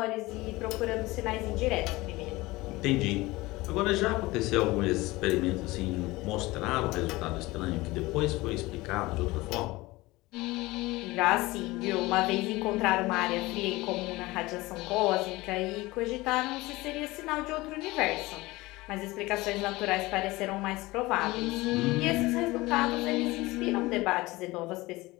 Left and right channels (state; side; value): quieter; right; 20.6 dB